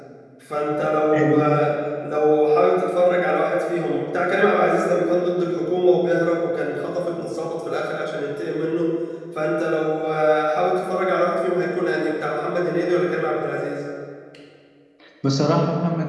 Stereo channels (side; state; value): both; identical; correlation 1.00